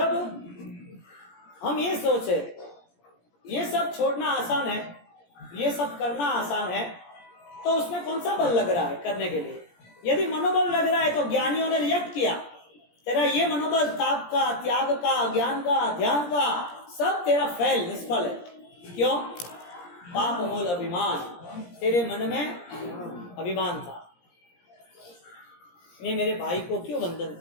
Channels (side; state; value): right; late; 17 ms